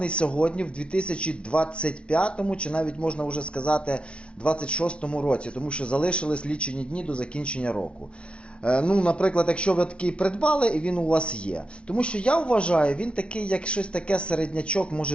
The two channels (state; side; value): late; right; 0.059 ms